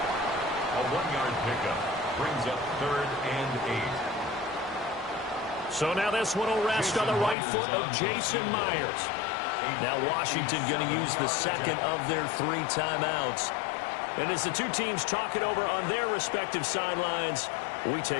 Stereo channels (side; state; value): right; drops out; at 7.4 s